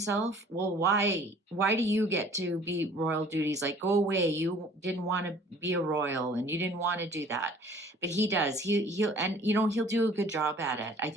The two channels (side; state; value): both; normal; correlation 0.52